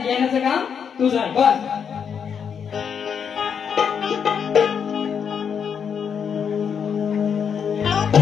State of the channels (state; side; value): quieter; right; 7.2 dB